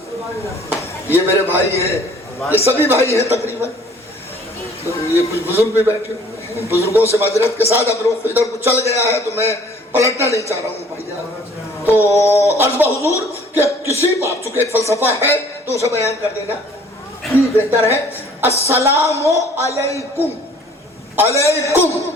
یہ میرے بھائی ہیں، یہ سبھی بھائی ہیں تقریباً، یہ کچھ بزرگ بھی بیٹھے ہوئے ہیں، بزرگوں سے معذرت کے ساتھ اب رخ ادھر کو چل گیا ہے تو میں پلٹنا نہیں چاہ رہا ہوں بھائی۔ تو عرض بحضور کہ کسی بات، چونکہ ایک فلسفہ ہے تو اسے بیان کر دینا بہتر ہے۔ السلام علیکم، علیکم،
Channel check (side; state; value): both; normal; correlation 0.54